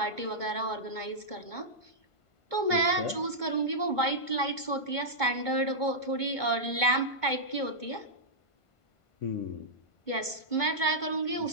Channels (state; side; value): late; right; 1.5 ms